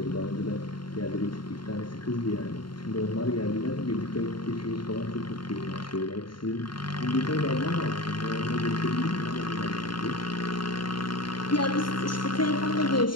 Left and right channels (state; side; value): late; right; 0.72 ms